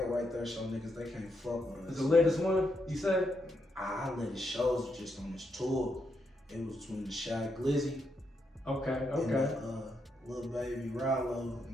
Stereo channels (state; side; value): normal; both; correlation 0.80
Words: right there show niggas they can't fuck with us. Is the latest one, you said? I let the shows just on this tour. It was between the Shy Glizzy Okay. and the Little Baby Rallo,